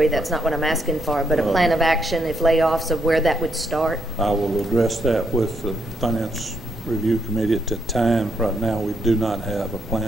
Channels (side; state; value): both; normal; correlation 0.76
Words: that's not what I'm asking for, but a plan of action if layoffs, of where that would start? I will address that with the Finance Review Committee at that time. Right now, we do not have a